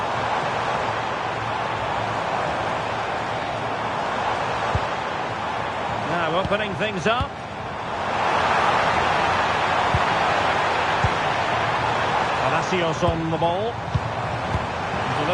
Now opening things up. Palacios on the ball.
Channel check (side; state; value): both; identical; correlation 1.00